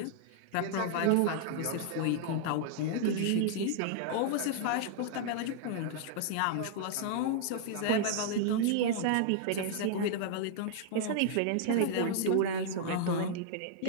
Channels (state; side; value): different; both; correlation -0.01